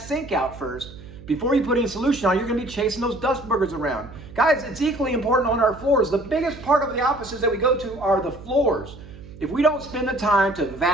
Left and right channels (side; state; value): right; noise; hum, 17 dB below the sound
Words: sink out first, before you put any solution on, you're going to be chasing those dust boogers around. Guys, it's equally important on our floors. The biggest part of the offices that we go to are the floors. If we don't spend the time to